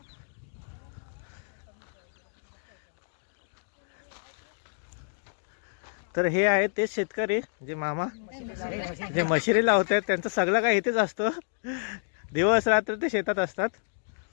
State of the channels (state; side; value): silent; right; digital silence